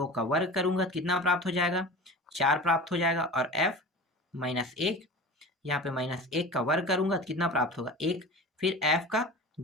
का वर्ग करूंगा तो कितना प्राप्त हो जाएगा, 4 प्राप्त हो जाएगा। और f -1, यहाँ पे -1 का वर्ग करूंगा तो कितना प्राप्त होगा, 1। फिर f का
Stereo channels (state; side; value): normal; both; correlation 0.35